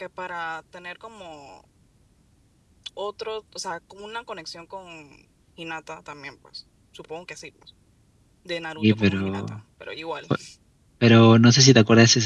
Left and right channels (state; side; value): identical; both; correlation 1.00